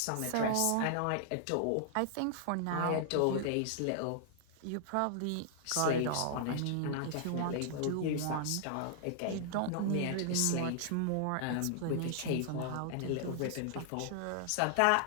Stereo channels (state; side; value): different; both; correlation -0.01